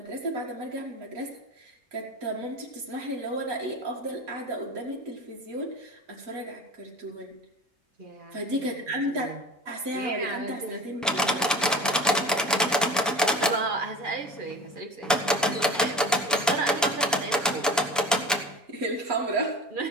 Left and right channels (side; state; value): both; normal; correlation 0.36